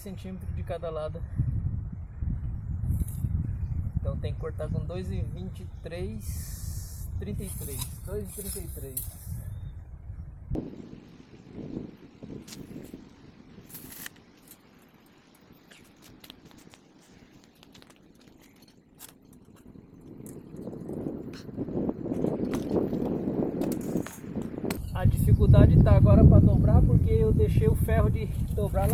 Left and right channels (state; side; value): identical; both; correlation 1.00